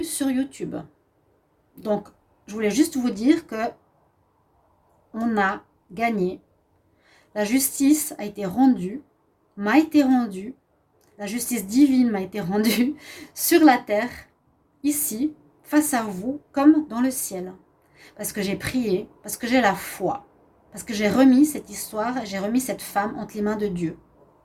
sur YouTube. Donc, je voulais juste vous dire que on a gagné. La justice a été rendue, m'a été rendue. La justice divine m'a été rendue sur la terre, ici, face à vous, comme dans le ciel. Parce que j'ai prié, parce que j'ai la foi, parce que j'ai remis cette histoire, j'ai remis cette femme entre les mains de Dieu.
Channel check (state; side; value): identical; both; correlation 1.00